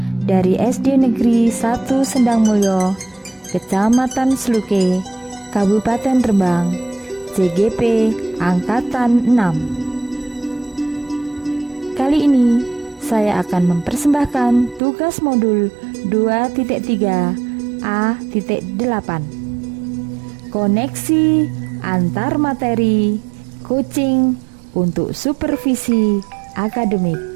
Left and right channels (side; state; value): left; drops out; at 14.8 s